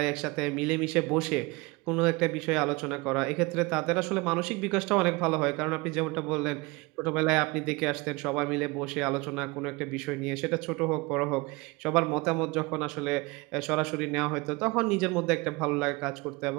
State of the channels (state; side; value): quieter; left; 24.9 dB